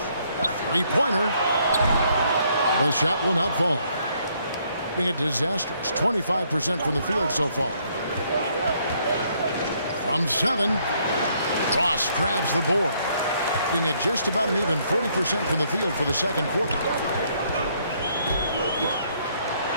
Three-pointer. The shot will not fall. Being a disastrous 25% from the field so far. From 7, Ross grabs the board. Being at just about an even 40% from the field for the second quarter.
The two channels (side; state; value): both; inverted; correlation -0.69